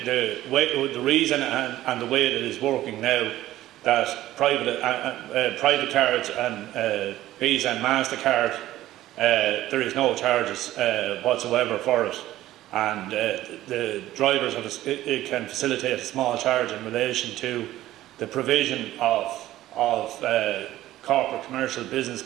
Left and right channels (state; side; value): quieter; left; 14.7 dB